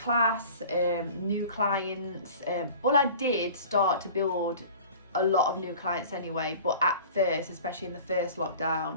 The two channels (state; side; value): inverted; both; correlation -0.42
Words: new clients. Well, I did start to build a lot of new clients anyway, but at first, especially in the first